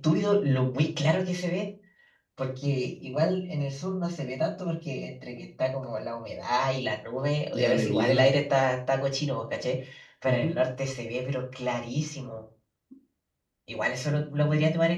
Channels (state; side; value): identical; both; correlation 1.00